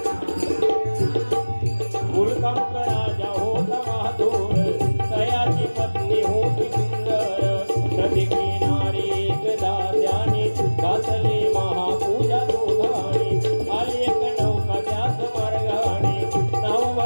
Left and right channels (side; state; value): both; inverted; correlation -1.00